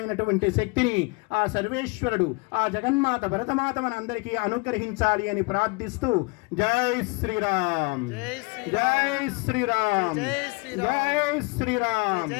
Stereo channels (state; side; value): quieter; right; 28.8 dB